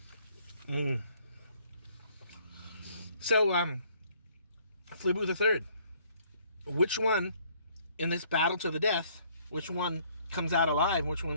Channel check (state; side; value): inverted; both; correlation -0.62